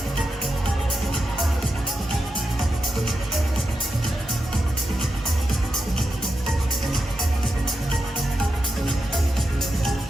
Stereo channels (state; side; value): normal; both; correlation 0.88